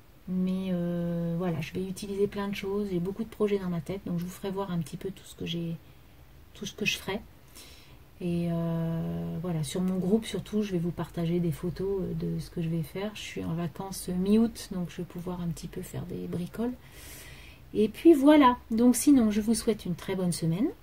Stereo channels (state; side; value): identical; both; correlation 1.00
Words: Mais voilà, je vais utiliser plein de choses. J'ai beaucoup de projets dans ma tête. Donc je vous ferai voir un petit peu tout ce que je ferai. Et voilà, sur mon groupe surtout, je vais vous partager des photos de ce que je vais faire. Je suis en vacances mi-août, donc je vais pouvoir un petit peu faire des bricoles. Et puis voilà, donc sinon je vous souhaite une très bonne semaine.